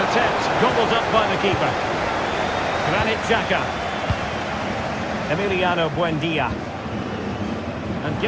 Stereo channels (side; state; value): both; identical; correlation 1.00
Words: attempt, gobbled up by the keeper. Granit Xhaka. Emiliano Buendia. And